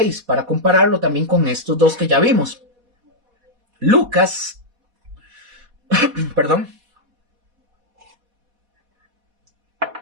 para compararlo también con estos dos que ya vimos. Lucas, perdón.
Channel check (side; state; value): left; late; 4.1 ms